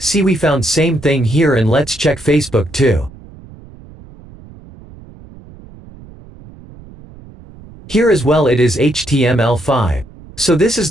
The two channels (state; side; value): noise; right; rumble, 20 dB below the sound